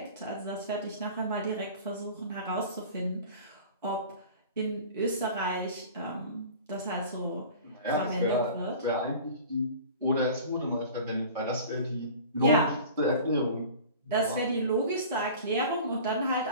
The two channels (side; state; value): both; inverted; correlation -0.41